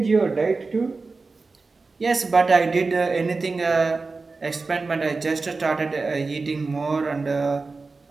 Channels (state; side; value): quieter; left; 3.9 dB